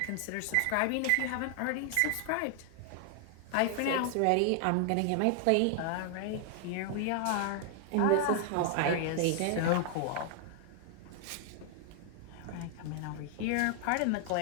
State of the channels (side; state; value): both; different; correlation 0.00